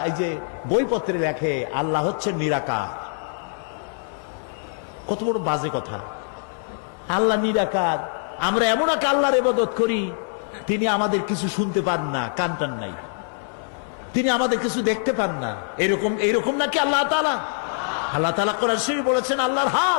এই যে বইপত্রে লেখে আল্লাহ হচ্ছে নিরাকার, কত বড় বাজে কথা। আল্লাহ নিরাকার, আমরা এমন এক আল্লাহর ইবাদত করি তিনি আমাদের কিছু শুনতে পান না, কান টান নাই, তিনি আমাদের কিছু দেখতে পান না। এরকম নাকি আল্লাহ তাআলা? আল্লাহ তাআলা কোরআন শরীফে বলেছেন আল্লাহর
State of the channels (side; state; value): right; silent; 63 dB below the other